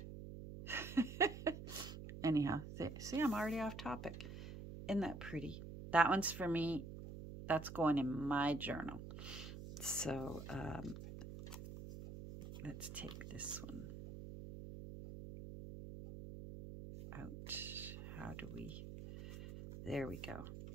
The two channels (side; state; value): right; noise; hum, 10 dB below the sound